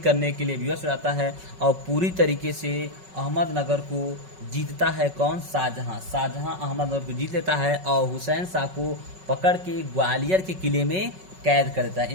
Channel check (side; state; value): left; late; 5.4 ms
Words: के लिए विवश हो जाता है और पूरी तरीके से अहमदनगर को जीतता है। कौन, शाहजहां अहमदनगर को जीत लेता है और हुसैन शाह को पकड़ के ग्वालियर के किले में कैद कर देता है।